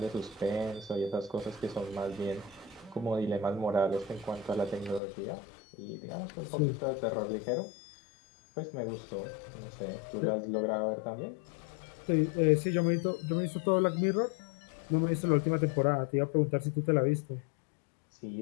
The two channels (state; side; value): drops out; right; at 5.0 s